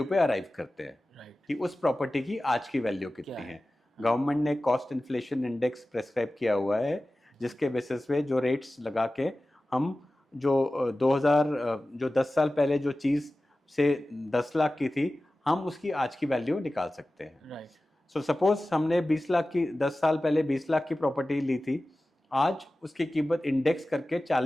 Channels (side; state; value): both; normal; correlation 0.96